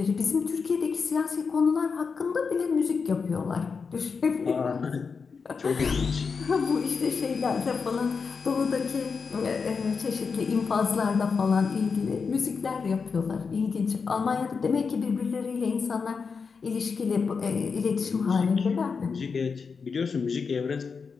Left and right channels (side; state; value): right; quieter; 5.3 dB